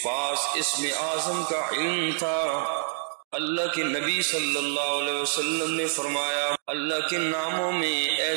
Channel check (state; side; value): silent; left; digital silence